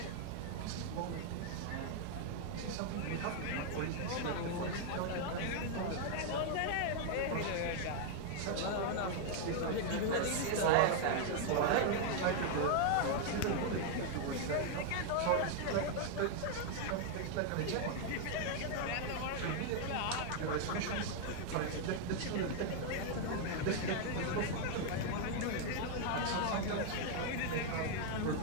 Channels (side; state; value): both; different; correlation 0.00